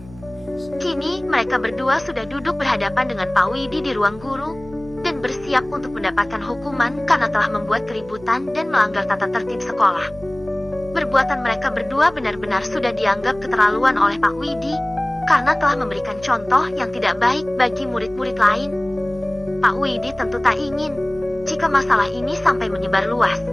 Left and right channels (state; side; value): noise; right; hum, 20 dB below the sound